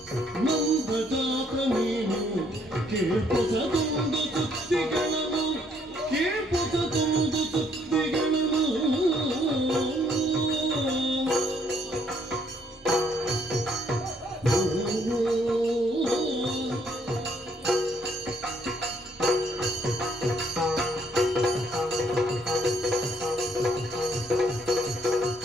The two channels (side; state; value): both; normal; correlation 0.67